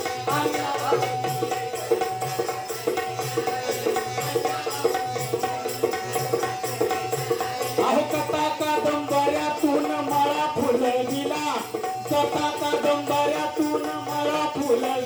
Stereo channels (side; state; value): both; identical; correlation 1.00